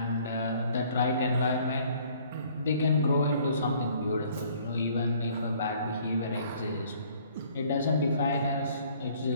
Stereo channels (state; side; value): inverted; both; correlation -0.58